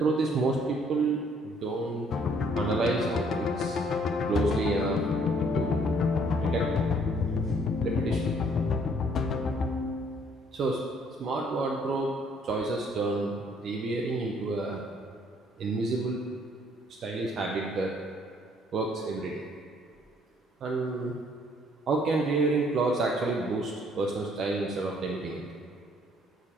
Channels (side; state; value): both; normal; correlation 0.63